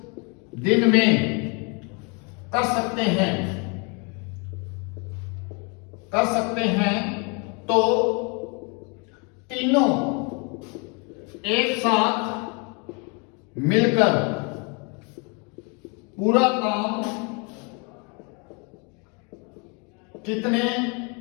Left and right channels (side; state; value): right; quieter; 33.4 dB